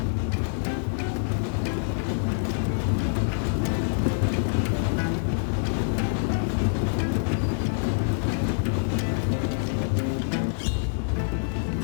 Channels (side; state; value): right; silent; digital silence